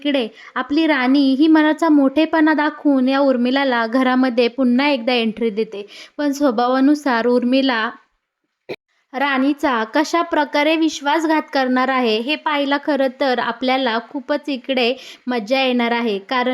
आपली राणी ही मनाचा मोठेपणा दाखवून या उर्मिलाला घरामध्ये पुन्हा एकदा एंट्री देते. पण स्वभावानुसार उर्मिला राणीचा कशा प्रकारे विश्वासघात करणार आहे हे पाहायला खरं तर आपल्याला खूपच इकडे मज्जा येणार आहे.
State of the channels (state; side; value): identical; both; correlation 1.00